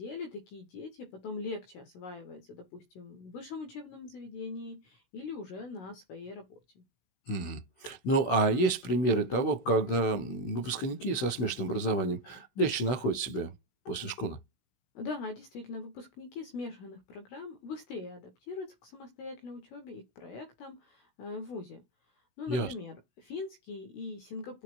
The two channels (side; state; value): right; late; 16 ms